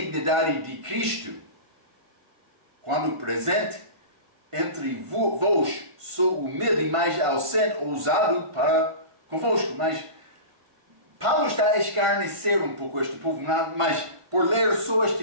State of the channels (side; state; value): left; late; 1.5 ms